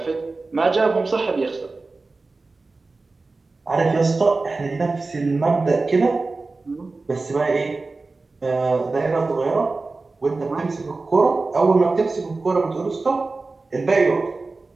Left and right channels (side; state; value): left; quieter; 3.6 dB